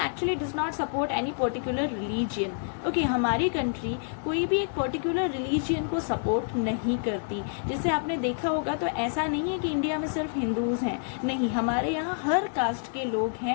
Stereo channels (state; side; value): silent; right; 59 dB below the other